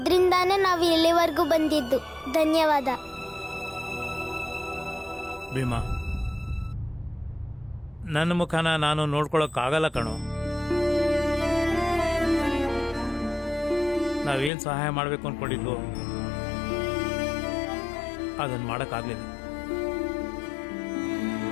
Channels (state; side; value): drops out; right; at 14.5 s